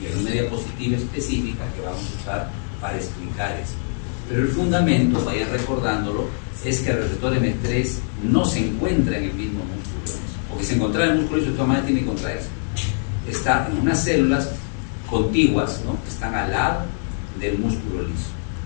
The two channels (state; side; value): silent; right; digital silence